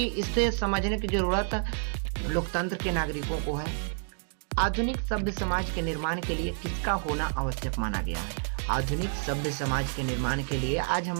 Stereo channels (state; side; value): silent; left; digital silence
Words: इससे समझने की जरूरत लोकतंत्र के नागरिकों को है। आधुनिक सभ्य समाज के निर्माण के लिए किसका होना आवश्यक माना गया है। आधुनिक सभ्य समाज के निर्माण के लिए आज